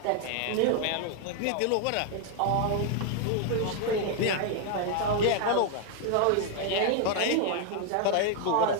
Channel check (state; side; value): different; both; correlation 0.00